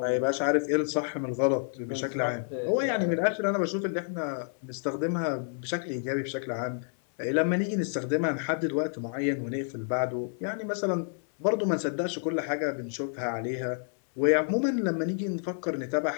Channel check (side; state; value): right; silent; 58 dB below the other